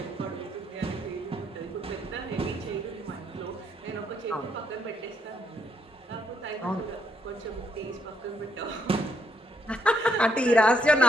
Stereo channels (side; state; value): both; normal; correlation 0.74